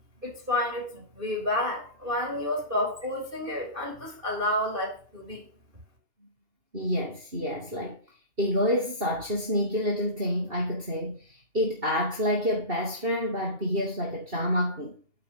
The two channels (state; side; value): late; left; 2.7 ms